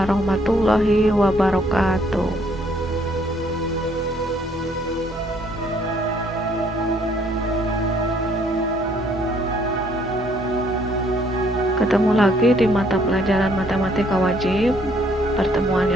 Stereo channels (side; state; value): both; normal; correlation 0.65